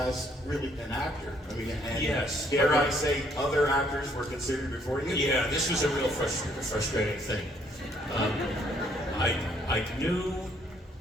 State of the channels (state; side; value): normal; both; correlation 0.67